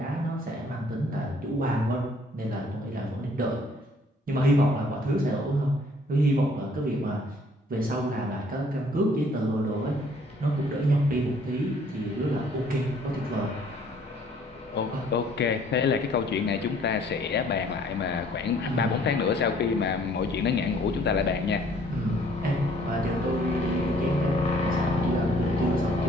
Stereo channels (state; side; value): normal; both; correlation 0.60